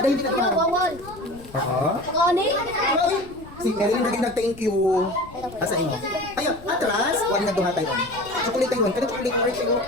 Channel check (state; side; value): noise; left; rumble, 19 dB below the sound